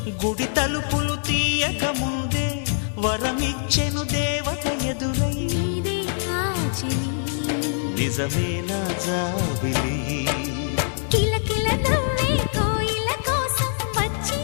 గుడి తలుపులు తీయక ముందే వరమిచ్చెను దేవత ఎదురై నీదే ఆచని నిజమే నా జాబిలి కిలకిల నవ్వే కోయిల కోసం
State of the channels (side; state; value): right; silent; digital silence